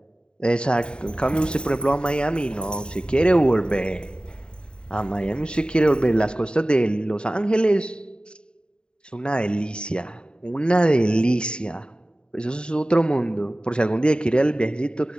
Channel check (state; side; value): late; right; 0.050 ms